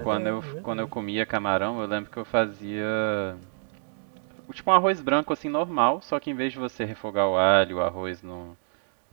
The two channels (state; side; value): silent; left; digital silence